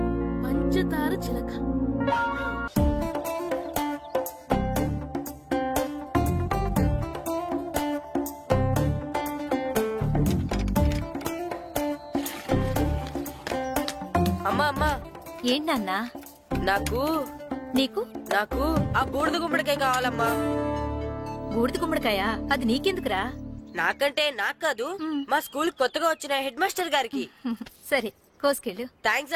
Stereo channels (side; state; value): both; identical; correlation 1.00